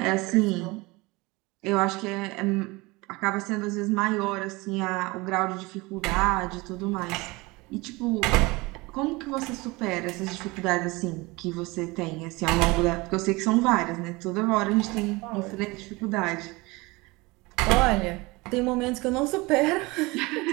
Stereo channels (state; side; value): quieter; left; 23.5 dB